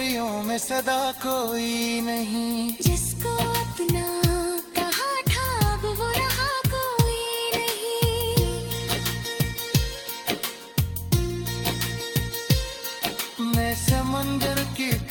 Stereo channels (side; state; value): both; identical; correlation 1.00